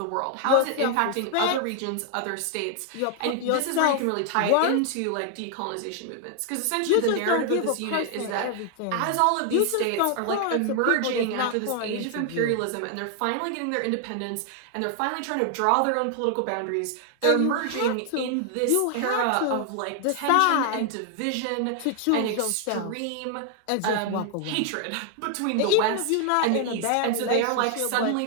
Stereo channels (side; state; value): both; different; correlation 0.00